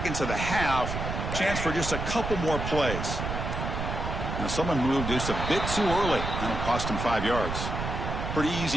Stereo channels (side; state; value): right; noise; rumble, 4 dB below the sound